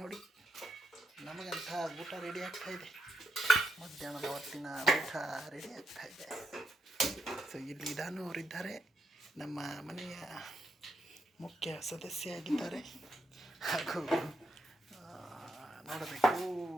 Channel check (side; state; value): both; normal; correlation 0.80